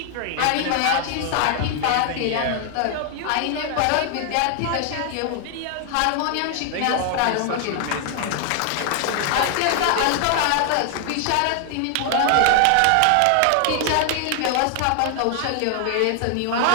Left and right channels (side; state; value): both; different; correlation 0.00